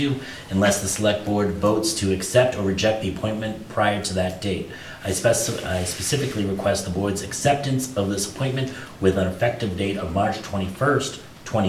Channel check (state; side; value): identical; both; correlation 1.00